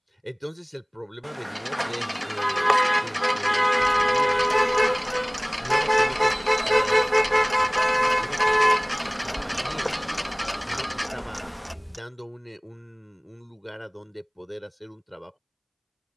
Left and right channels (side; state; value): both; identical; correlation 1.00